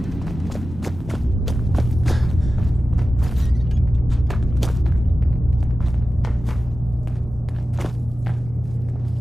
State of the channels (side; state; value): both; normal; correlation 0.94